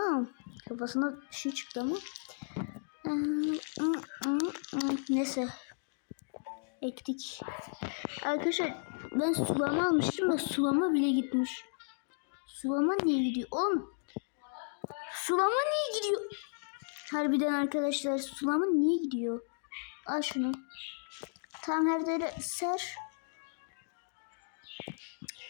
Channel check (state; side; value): silent; right; digital silence